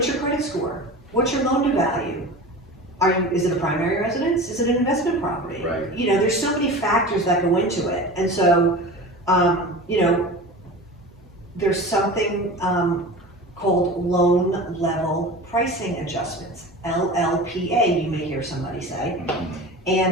your credit score? What's your loan to value? Is it a primary residence? Is it an investment property? You know, there's so many factors that go into it. And so, you know, there's something called loan level pricing adjustments, LLPA, you may hear somebody say.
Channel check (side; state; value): both; normal; correlation 0.33